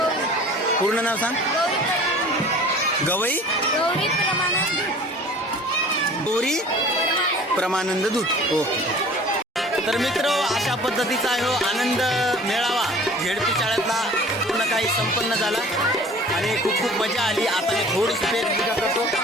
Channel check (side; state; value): both; normal; correlation 0.46